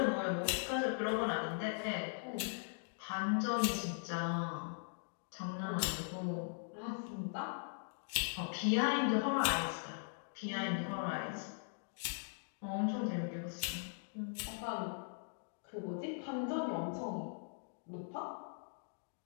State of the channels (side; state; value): right; silent; digital silence